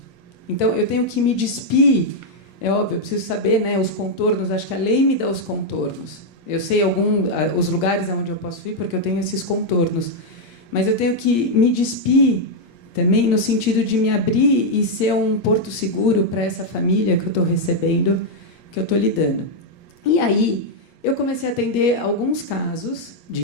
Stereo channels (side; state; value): right; late; 8.6 ms